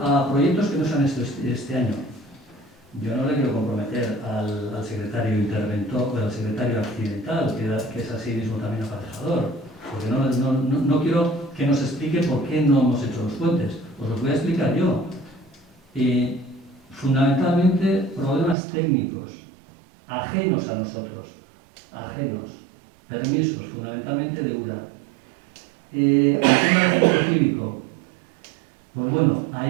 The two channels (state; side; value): drops out; left; at 18.6 s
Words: a proyectos que no se han hecho este año, yo no le quiero comprometer al secretario interventor o al secretario accidental, que es así mismo también aparejador, porque no quiero que nos explique por qué no hemos hecho los puentes. Os los voy a explicar yo. Fundamentalmente, problemas técnicos, ajenos a nosotros, permisos, fundamentalmente de URA. El tema del centro cívico. Pues bueno,